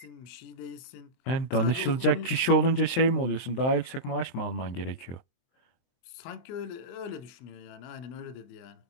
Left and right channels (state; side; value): late; right; 23 ms